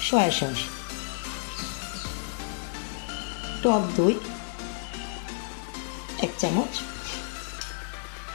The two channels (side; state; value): right; silent; digital silence